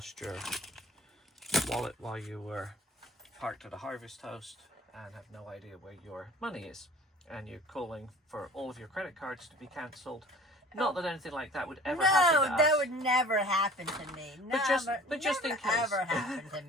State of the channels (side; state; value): both; normal; correlation 0.45